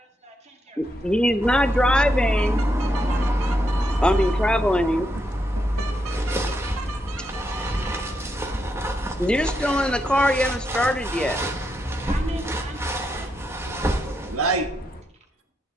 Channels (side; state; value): both; normal; correlation 0.82